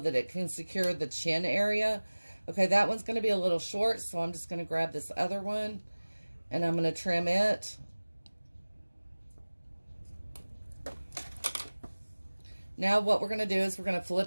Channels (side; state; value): both; inverted; correlation -1.00